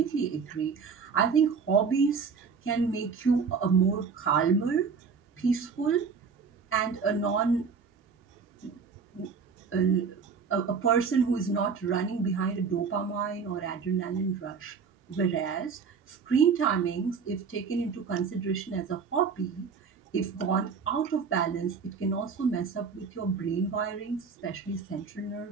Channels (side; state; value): left; quieter; 5.7 dB